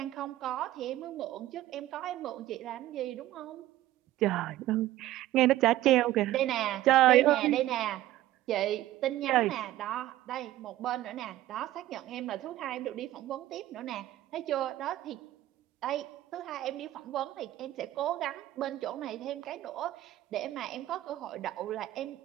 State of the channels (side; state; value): left; quieter; 14.9 dB